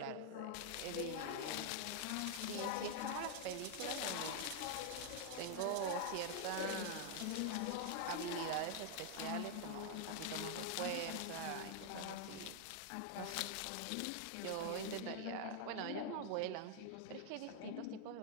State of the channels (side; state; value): both; different; correlation 0.00